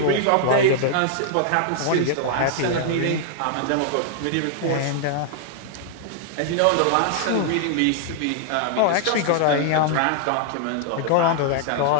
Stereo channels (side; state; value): both; different; correlation 0.00